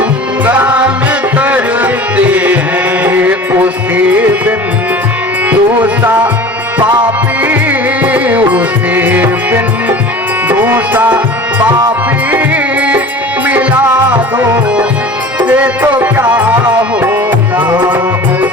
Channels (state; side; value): normal; both; correlation 0.39